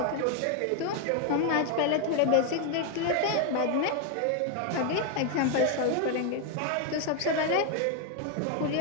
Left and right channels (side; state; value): both; different; correlation 0.01